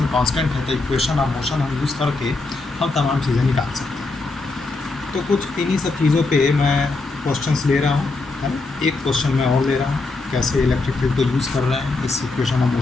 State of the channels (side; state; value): right; quieter; 3.5 dB